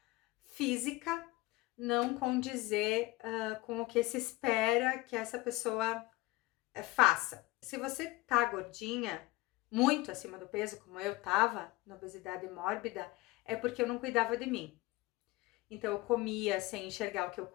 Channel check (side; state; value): right; quieter; 20.2 dB